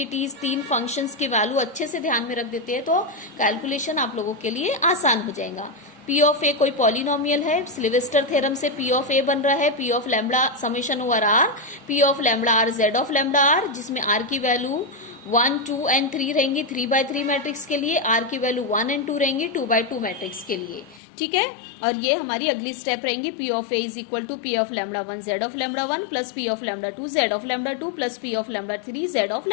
3 फंक्शंस की वैल्यू अच्छे से ध्यान में रख देते हैं तो कैलकुलेशन आप लोगों के लिए आसान हो जाएगा. P ऑफ A कोई पॉलिनोमियल है. सिल्वेस्टर थ्योरम से P ऑफ A बन रहा है P of lambda summation over R P of lambda R Z of lambda R जिसमें R की वैल्यू 1, 2 एंड 3 रहेंगी 3x3 मैट्रिक्स के लिए. R की वैल्यू 1 एंड 2 रहेंगी 2x2 मैट्रिक्स के लिए. ठीक है. और ये हमारी अगली स्टेप रहेंगी P of A is equal to P of lambda 1 Z of lambda 1 plus P of lambda 2 Z of lambda 2 plus P of lambda 3 Z of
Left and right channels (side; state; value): right; drops out; at 21.0 s